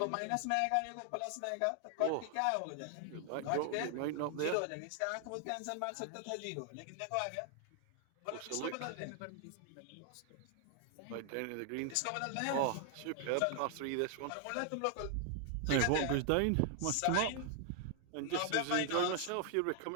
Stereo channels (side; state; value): both; different; correlation 0.00